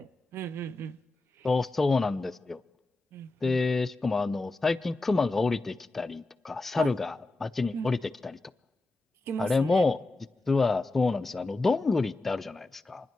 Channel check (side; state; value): right; quieter; 3.1 dB